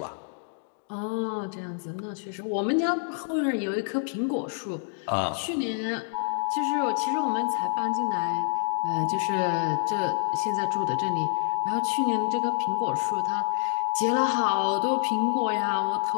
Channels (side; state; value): right; silent; digital silence